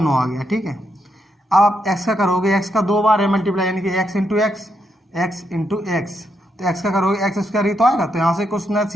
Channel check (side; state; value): both; normal; correlation 0.80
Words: आ गया। ठीक है, अब आप x का करोगे, x का 2 बार है मल्टीप्लाई, यानी कि x × x, तो x का करोगे x² ही तो आएगा, तो यहाँ से कुछ ना